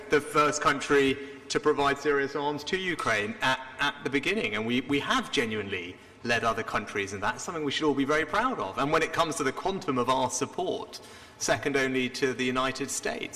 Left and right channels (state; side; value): identical; both; correlation 1.00